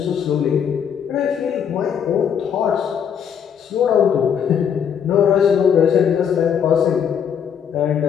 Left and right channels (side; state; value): right; quieter; 7.9 dB